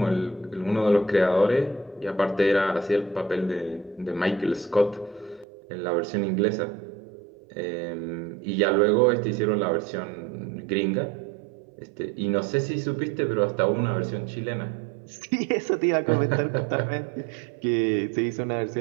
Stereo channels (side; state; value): left; drops out; at 5.5 s